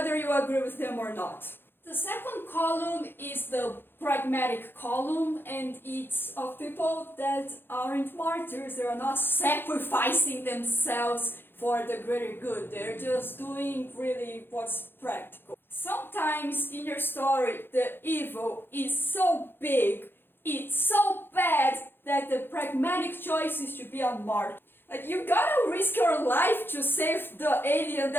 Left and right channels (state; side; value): late; right; 0.10 ms